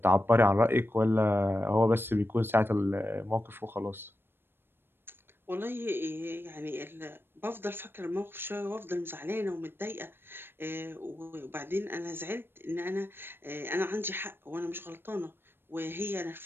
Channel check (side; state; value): left; late; 0.10 ms